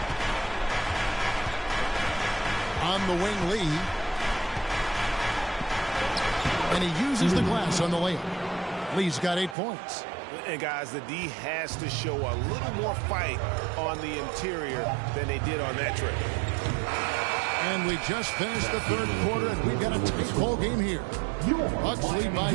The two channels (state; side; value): drops out; left; at 9.6 s